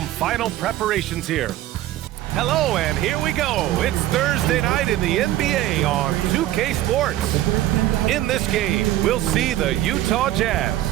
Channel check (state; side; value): quieter; left; 14.2 dB